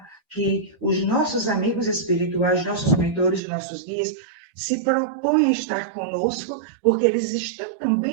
que os nossos amigos espirituais, nossos mentores, nossos guias, se propõem a estar conosco, porque eles estão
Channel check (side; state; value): left; drops out; at 3.4 s